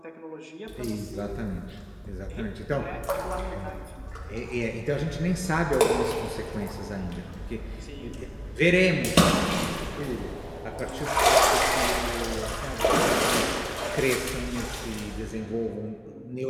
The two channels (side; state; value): both; identical; correlation 1.00